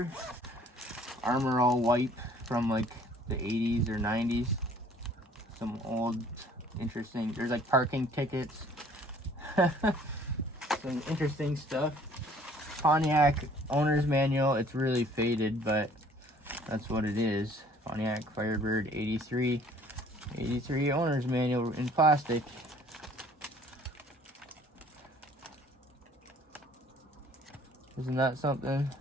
Armor All wipe from like the 80s or 90s. Some old interesting, there's like parking tickets. Some interesting stuff. Pontiac owner's manual. It's really faded, but that's what it is. Pontiac Firebird 83 owner's manual in plastic. Isn't that something?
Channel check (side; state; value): both; normal; correlation 0.56